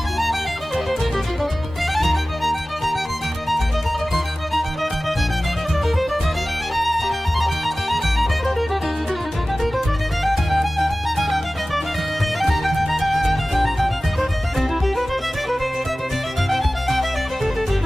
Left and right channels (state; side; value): normal; both; correlation 0.97